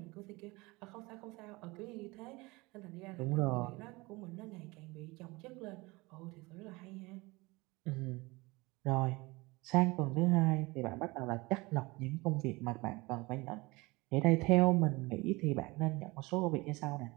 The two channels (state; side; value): quieter; left; 23.4 dB